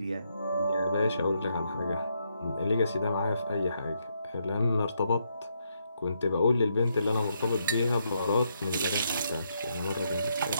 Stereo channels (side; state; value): both; inverted; correlation -0.77